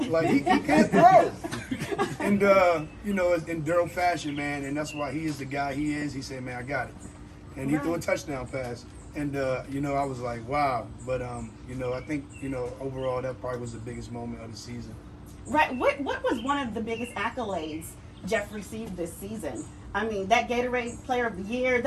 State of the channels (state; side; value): identical; both; correlation 1.00